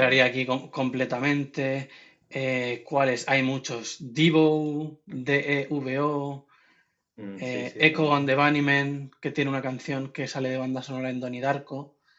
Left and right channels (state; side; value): identical; both; correlation 1.00